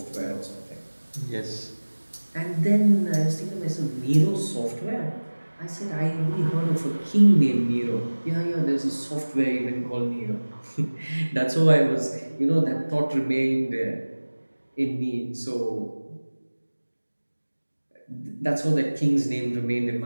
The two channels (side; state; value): both; inverted; correlation -1.00